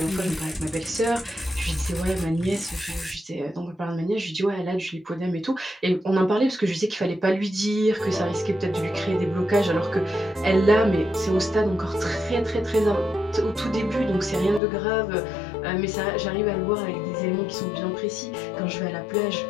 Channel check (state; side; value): drops out; right; at 14.6 s